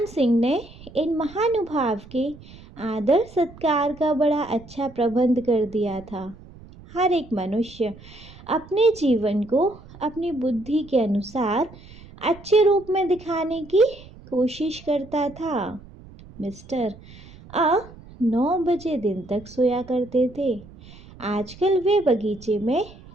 सिंह ने इन महानुभाव के आदर सत्कार का बड़ा अच्छा प्रबंध कर दिया था। हर एक मनुष्य अपने जीवन को अपनी बुद्धि के अनुसार अच्छे रूप में दिखाने की कोशिश करता था। मिस्टर 9 बजे दिन तक सोया करते थे। आजकल वे बगीचे में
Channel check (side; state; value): right; noise; rumble, 20 dB below the sound